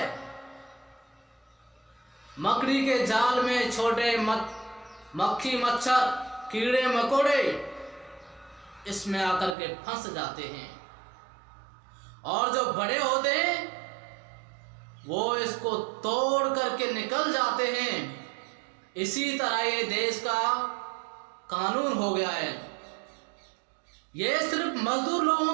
मकड़ी के जाल में छोटे मक्खी मच्छर कीड़े मकोड़े इसमें आकर के फंस जाते हैं, और जो बड़े होते हैं वो इसको तोड़ करके निकल जाते हैं। इसी तरह ये देश का कानून हो गया है। ये सिर्फ मजदूर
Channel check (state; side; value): drops out; left; at 9.6 s